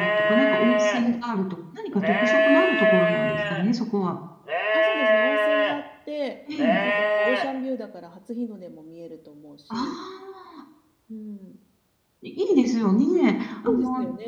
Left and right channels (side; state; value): both; identical; correlation 1.00